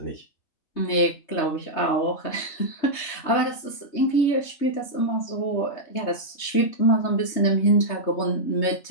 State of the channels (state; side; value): late; right; 3.2 ms